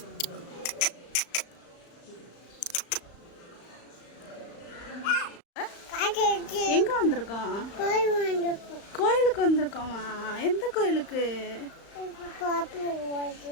எங்க வந்திருக்கோம்? கோயிலுக்கு வந்திருக்கோமா? எந்த கோயிலுக்கு?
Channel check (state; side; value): late; right; 35 ms